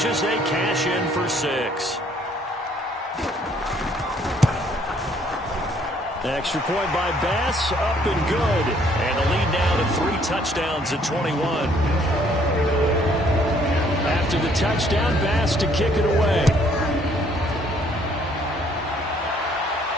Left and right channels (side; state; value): both; normal; correlation 0.63